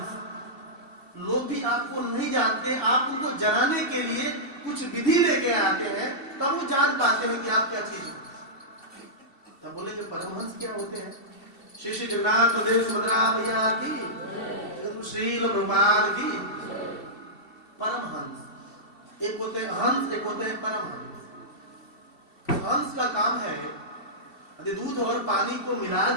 लोग भी आपको नहीं जानते, आप उनको जनाने के लिए कुछ विधि लेके आते हैं, तब वो जान पाते हैं कि आप क्या चीज हो। तब बोले जो परमहंस क्या होते हैं? श्री श्री जगन्नाथ देव सुभद्रा मैया की, श्री प्रभुपाद की। परमहंस एक होते हैं हंस, एक होते हैं परमहंस। हंस का काम है यदि दूध और पानी को मिला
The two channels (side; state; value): right; late; 2.7 ms